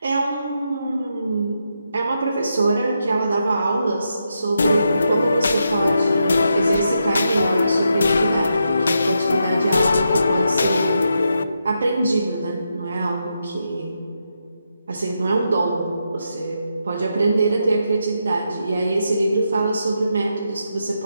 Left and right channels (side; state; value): both; inverted; correlation -0.83